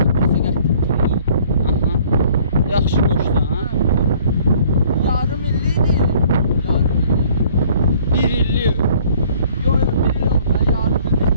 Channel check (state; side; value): inverted; both; correlation -0.56